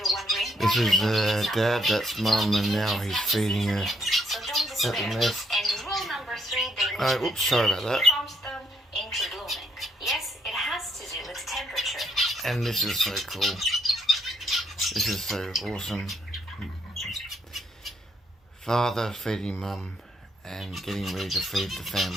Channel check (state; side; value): normal; both; correlation 0.72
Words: This is Dad, that's Mum, and now he's feeding her at the nest. Oh, oops, sorry about that. And this is so cool. This is so awesome. Father feeding Mum and getting ready to feed the